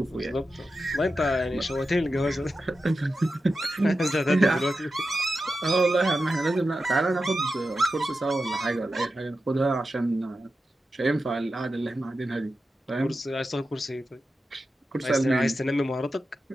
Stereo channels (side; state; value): both; normal; correlation 0.91